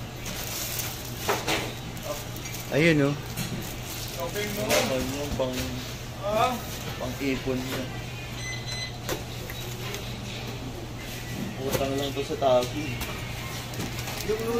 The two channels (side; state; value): both; identical; correlation 1.00